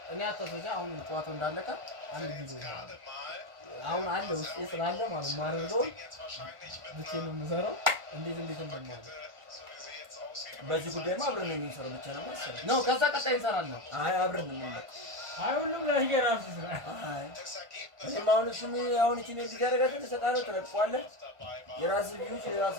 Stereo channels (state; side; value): late; left; 1.5 ms